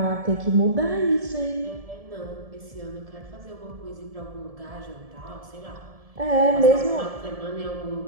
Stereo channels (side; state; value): left; late; 1.7 ms